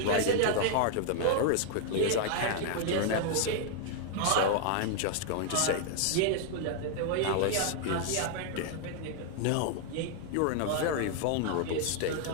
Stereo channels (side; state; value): both; different; correlation 0.00